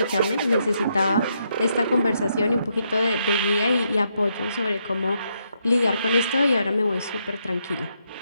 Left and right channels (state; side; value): inverted; both; correlation -0.78